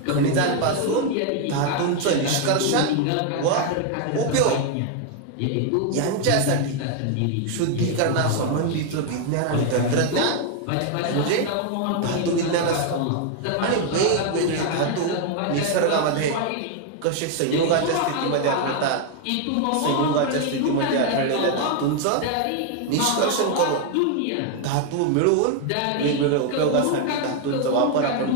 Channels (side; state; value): both; different; correlation 0.01